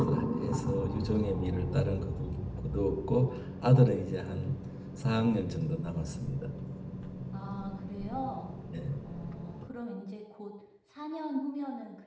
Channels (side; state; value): both; identical; correlation 1.00